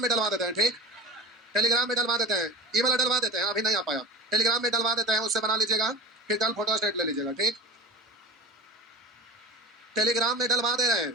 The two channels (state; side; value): normal; both; correlation 0.33